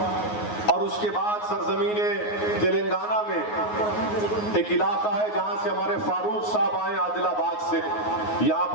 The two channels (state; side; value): late; right; 9.5 ms